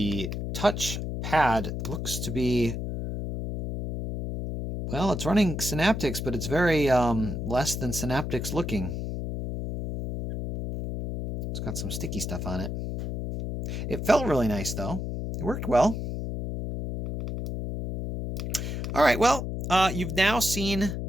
touch pad looks to be, well, it's running Synaptics, but it's very less than Synaptics looking. It's got some sticky stuff on it. It felt really nice, though. It worked well. All right, well, you've now seen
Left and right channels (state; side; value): noise; left; hum, 4 dB below the sound